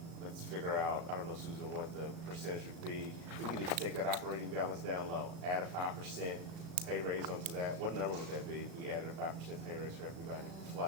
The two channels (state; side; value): late; left; 36 ms